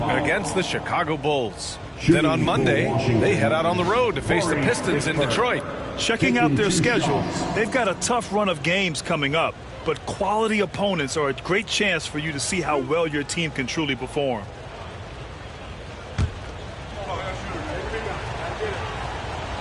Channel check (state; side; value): identical; both; correlation 1.00